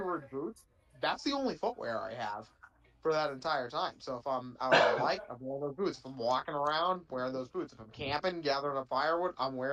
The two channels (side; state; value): both; identical; correlation 1.00